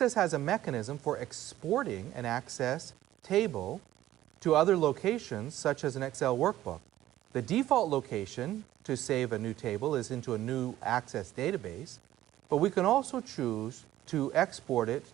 has a mechanism for exporting an Access table to other locations, such as an Excel workbook. The default location to save a new table is into a new Access database, but we can also choose to export it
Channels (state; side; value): quieter; left; 14.0 dB